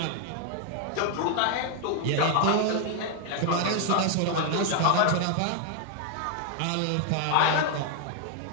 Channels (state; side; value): different; both; correlation 0.00